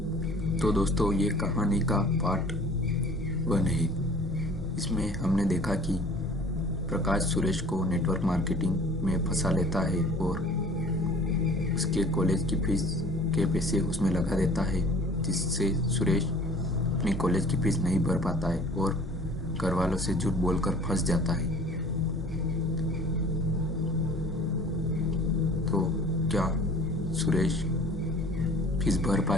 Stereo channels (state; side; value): normal; both; correlation 0.48